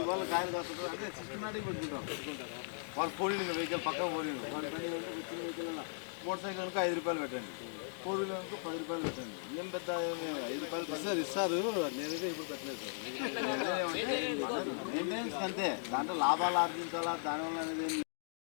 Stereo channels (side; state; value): right; silent; digital silence